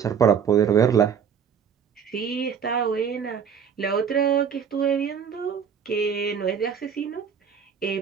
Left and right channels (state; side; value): quieter; left; 7.3 dB